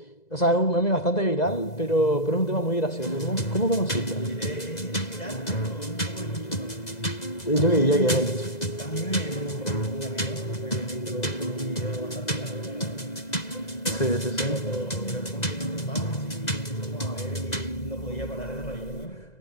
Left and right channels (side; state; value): right; late; 2.0 ms